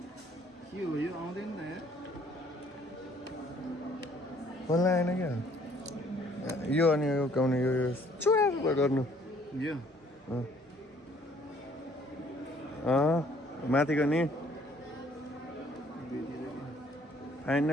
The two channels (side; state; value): both; normal; correlation 0.61